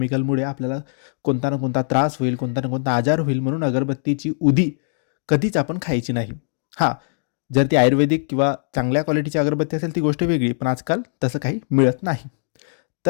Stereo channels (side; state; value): right; silent; digital silence